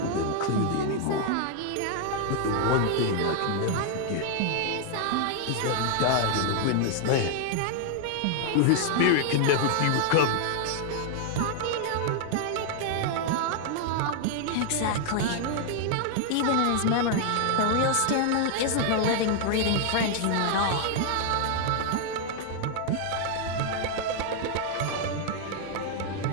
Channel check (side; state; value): both; different; correlation 0.00